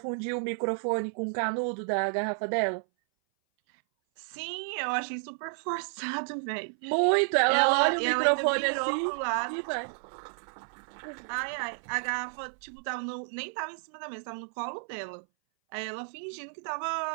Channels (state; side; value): silent; left; 57 dB below the other